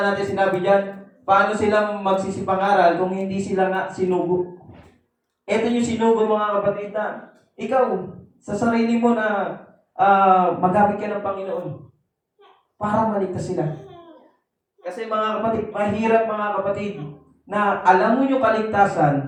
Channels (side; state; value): both; identical; correlation 1.00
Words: natin, sinabi diyan, paano sila magsisipangaral kung hindi sila nga sinugo? Ito yung sinugo, mga kapatid, na ikaw, sa sarili mo na magamit ka ng Panginoon para maligtas sila. Kasi mga kapatid, mahirap mga kapatid, na alam mo yung